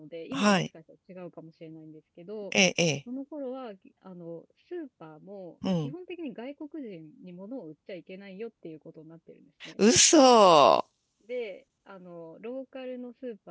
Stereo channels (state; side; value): identical; both; correlation 1.00